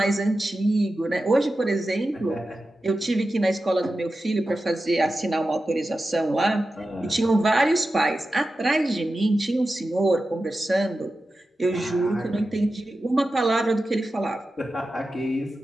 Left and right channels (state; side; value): normal; both; correlation 0.92